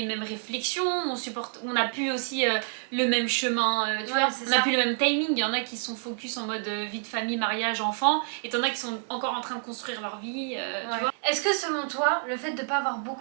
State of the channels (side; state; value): left; silent; 57 dB below the other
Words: mêmes réflexions, on a plus aussi le même chemin, tu vois. On a plus le même timing. Il y en a qui sont focus en mode vie de famille, mariage, enfant, et t'en as qui sont encore en train de construire leur vie, tu vois. Est-ce que selon toi, le fait de pas avoir